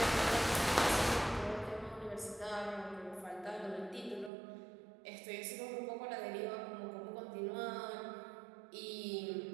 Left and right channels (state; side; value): drops out; left; at 4.3 s